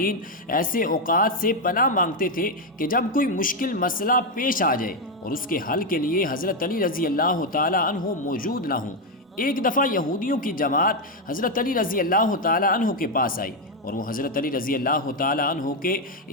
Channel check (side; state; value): both; normal; correlation 0.05